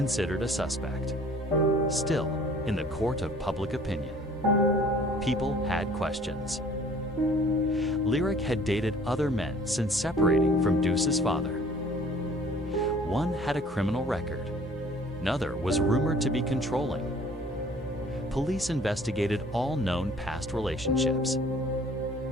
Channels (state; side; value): normal; both; correlation 0.53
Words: a suspect. Still, in the court of public opinion, people had questions. Lyric had dated other men since separating from Deuce's father. One had a criminal record. Another was rumored to be controlling. Police investigated all known past relationships.